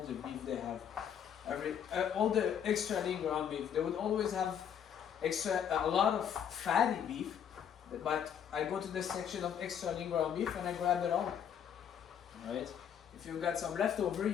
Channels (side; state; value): right; quieter; 8.6 dB